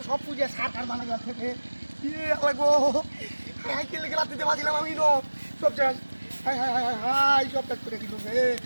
সব পুজো সার কার বানা গেছে থেকে লাগবো হাই কে লেগে লাঠি দিয়ে বাজিলাম আমি সব শেষ হাই হাই হাই হাই সব শেষ করে দিল রে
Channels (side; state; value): both; inverted; correlation -1.00